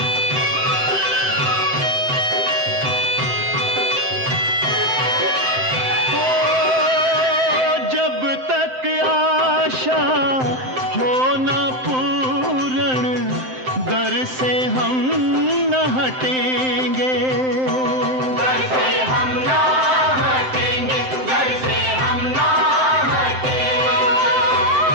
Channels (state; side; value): late; left; 7.7 ms